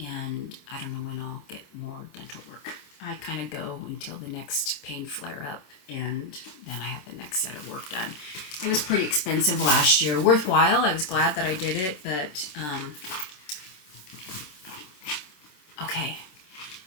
And I don't know when I'll get more dental work. I kind of go until the next pain flare up, and then I have the next set of work done. It was pretty expensive last year. Worthwhile. I was glad that I did it, but okay.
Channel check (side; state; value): right; late; 27 ms